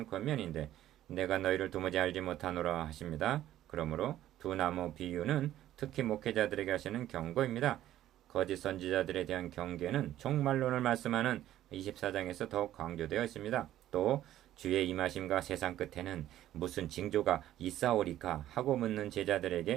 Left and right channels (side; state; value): left; quieter; 13.0 dB